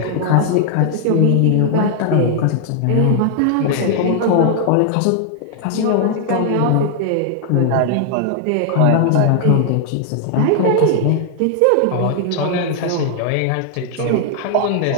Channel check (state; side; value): different; both; correlation 0.00